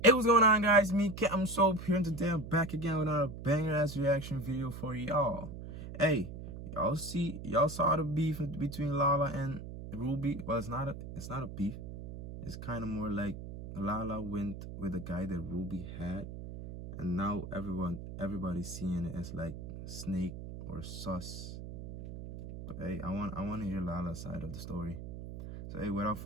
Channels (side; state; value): right; noise; hum, 10 dB below the sound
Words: Hey, what's going on, guys? Me, Captain Soap here, and today I'm back again with another banger-ass reaction video for y'all. Hey, y'all saw the beef between Lala and Ruby. Well, it's not a beef. It's kind of more like Lala went with a guy that Ruby had, and now everybody's seeing it as like snake or sus. But hey, I want to hear Lala's side of the story. So hey, without